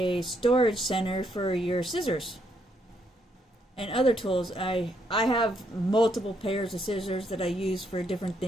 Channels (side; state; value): both; normal; correlation 0.74